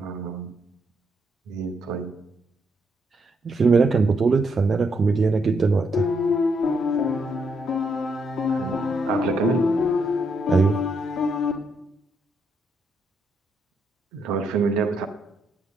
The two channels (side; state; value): both; normal; correlation 0.77